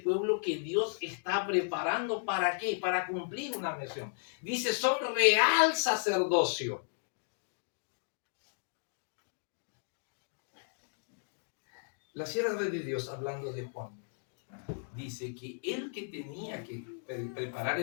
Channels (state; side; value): silent; right; digital silence